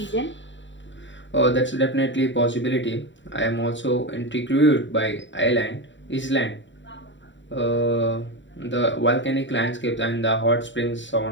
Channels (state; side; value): late; right; 0.54 ms